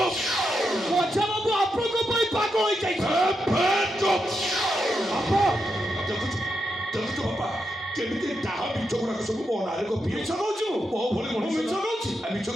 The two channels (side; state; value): both; normal; correlation 0.84